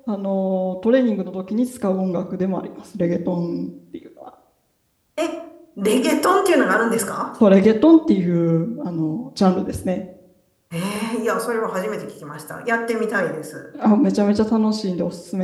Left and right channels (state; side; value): identical; both; correlation 1.00